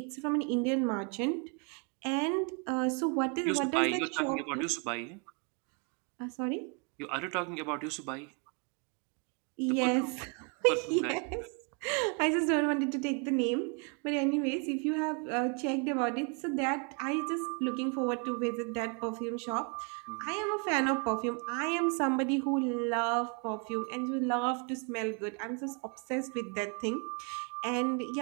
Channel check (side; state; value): left; quieter; 35.9 dB